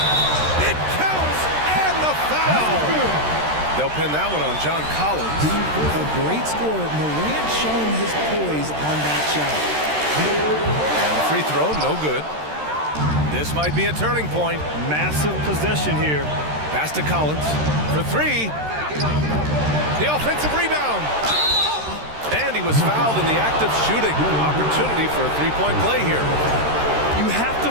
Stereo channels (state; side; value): late; left; 13 ms